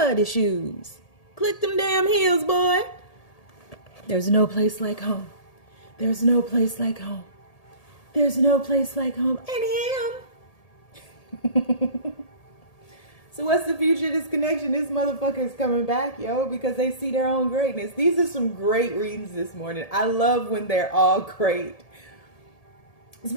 shoes. Click them damn heels, boy. There's no place like home. There's no place like home. There's no place like home. And him. So what's the future of this connection? This motherfucker is coming back, yo, because they see their own greatness. These are some great readings this morning. I love when they're all great. This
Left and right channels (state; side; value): late; right; 1.8 ms